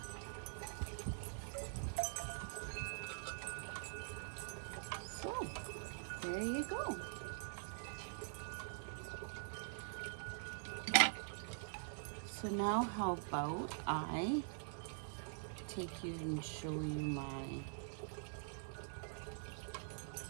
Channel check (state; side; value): silent; left; digital silence